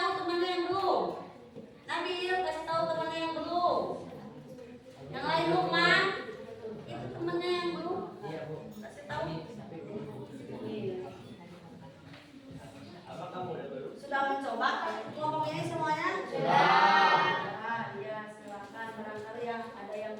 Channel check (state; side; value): identical; both; correlation 1.00